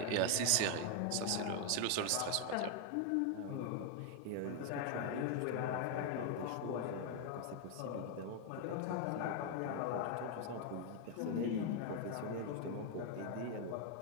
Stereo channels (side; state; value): both; different; correlation 0.00